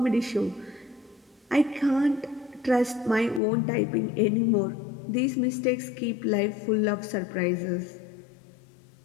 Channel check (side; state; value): right; drops out; at 3.4 s